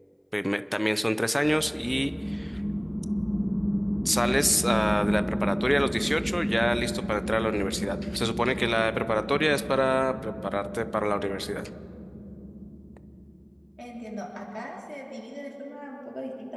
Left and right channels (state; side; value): identical; both; correlation 1.00